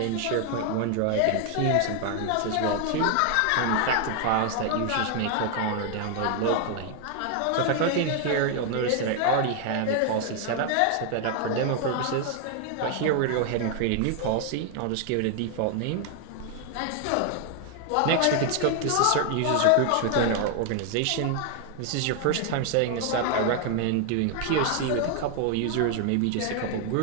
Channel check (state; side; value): different; both; correlation 0.00